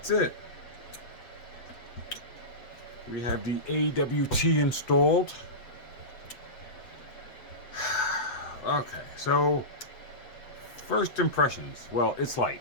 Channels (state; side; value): late; right; 7.8 ms